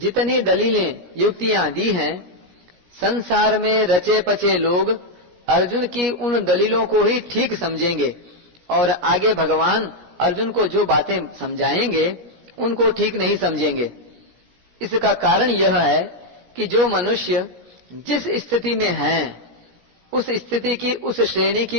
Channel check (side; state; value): left; late; 17 ms